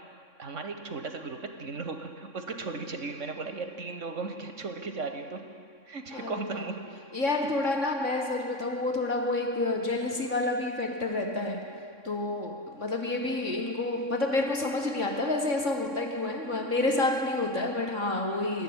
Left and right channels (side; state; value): left; late; 3.6 ms